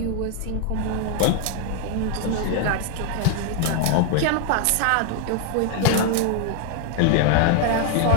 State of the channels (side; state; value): both; different; correlation 0.00